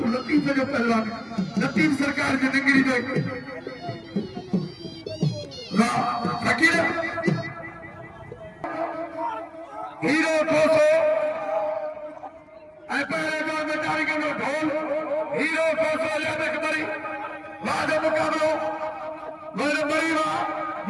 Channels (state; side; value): identical; both; correlation 1.00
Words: लतीफ जो पहलवान लतीफ सरकार की डिग्री दे वाह फकीर हीरो कोसो ऐ पहले जो बेचारी के ढोल हीरो कोसो याद करी राजा मुकाबलो मेरे मरीवा